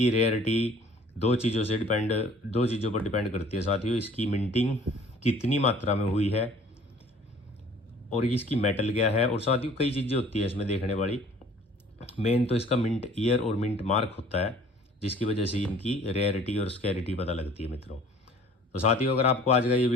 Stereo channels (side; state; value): both; normal; correlation 0.51